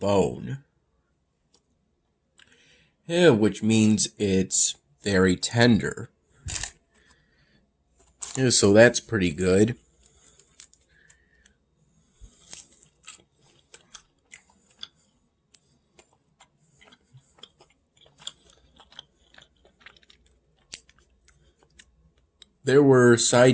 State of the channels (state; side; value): identical; both; correlation 1.00